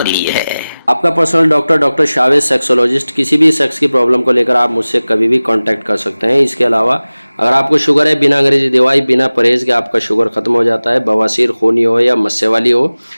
ली है। आपका पर्सनल डॉक्टर शावेज सेक्सोलॉजिस्ट, किसी भी सेक्स की प्रॉब्लम को लेकर आप मुझसे कभी भी कांटेक्ट कर सकते हैं। इसके अलावा अगर आपको शुगर है, बिना अंग्रेजी दवाई, बिना परहेज के आपका शुगर खत्म हो जाता है, बवासीर, खूनी हो या मस्से वाली हो,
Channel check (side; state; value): both; inverted; correlation -0.98